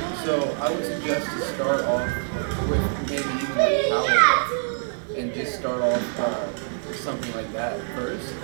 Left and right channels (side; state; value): left; silent; 62 dB below the other